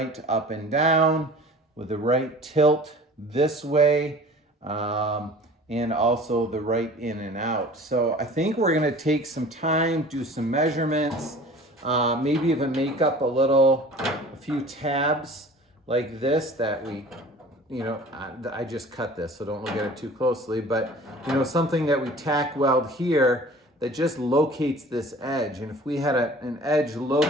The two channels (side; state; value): both; normal; correlation 0.44